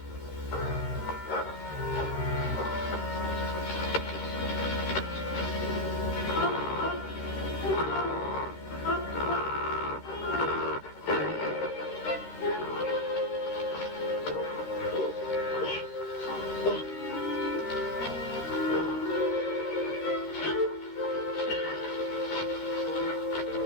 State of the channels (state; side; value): late; right; 13 ms